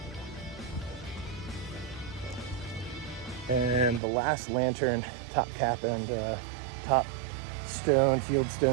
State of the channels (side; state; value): left; drops out; at 4.0 s